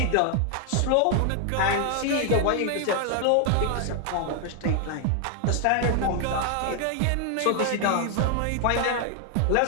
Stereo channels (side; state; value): both; different; correlation 0.00